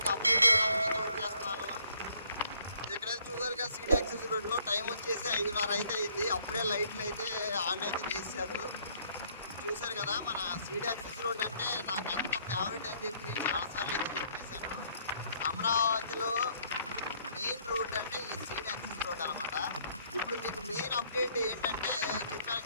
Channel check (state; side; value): inverted; both; correlation -0.64